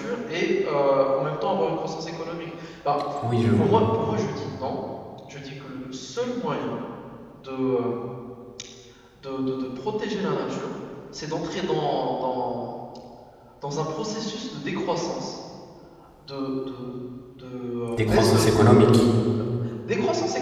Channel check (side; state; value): both; identical; correlation 1.00